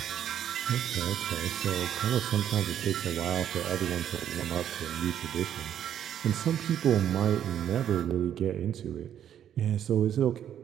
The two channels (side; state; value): left; quieter; 10.0 dB